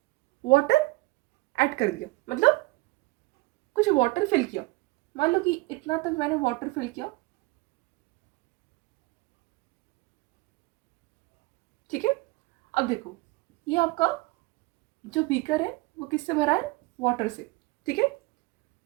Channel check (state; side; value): quieter; left; 22.6 dB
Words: वाटर ऐड कर दिया, मतलब कुछ वाटर फिल किया। मान लो कि इतना तक मैंने वाटर फिल किया। ठीक है, अब देखो, ये आपका जो बीकर है वो किससे भरा है, वाटर से। ठीक है,